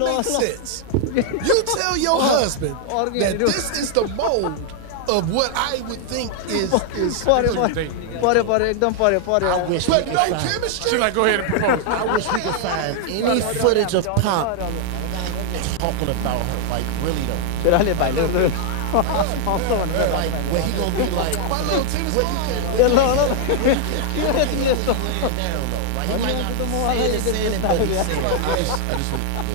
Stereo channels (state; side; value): different; both; correlation 0.00